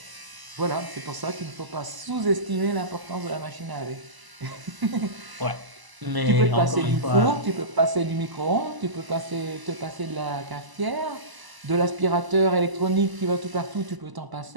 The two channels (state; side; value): late; left; 1.0 ms